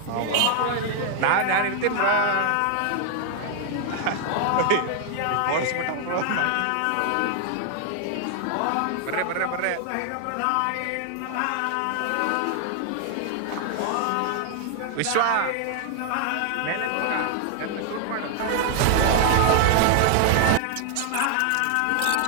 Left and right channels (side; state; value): both; different; correlation 0.00